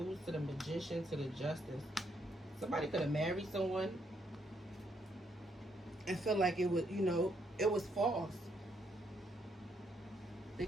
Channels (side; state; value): both; normal; correlation 0.74